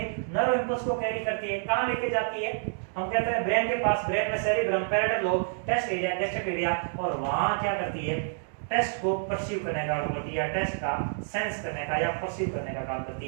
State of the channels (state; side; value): silent; left; digital silence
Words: नर्व इंपल्स को कैरी करती है। कहां लेके जाती है? हम कहते हैं ब्रेन के पास। ब्रेन में cerebrum, parietal lobe, taste area, gastric area. और वहां क्या करती है? टेस्ट को परसीव करने का काम करती है, या टेस्ट का सेंस करने का या परसीव करने का काम